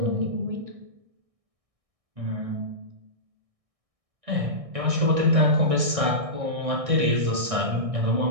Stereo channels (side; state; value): left; late; 1.6 ms